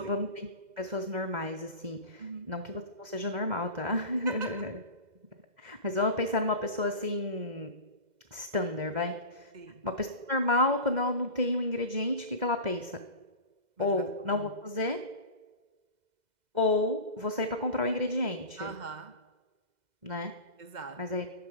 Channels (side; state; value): left; late; 2.0 ms